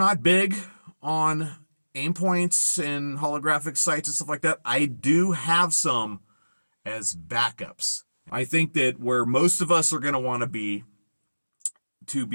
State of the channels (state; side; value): inverted; both; correlation -1.00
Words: big on aim points and holographic sights and stuff like that. I do have some as backups. I think that where most of us are going to want to be